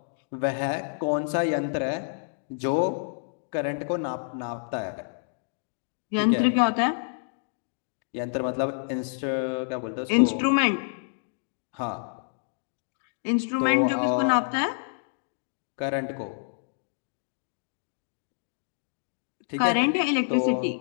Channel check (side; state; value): right; silent; digital silence